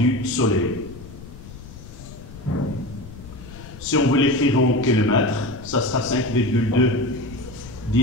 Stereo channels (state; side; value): noise; left; rumble, 15 dB below the sound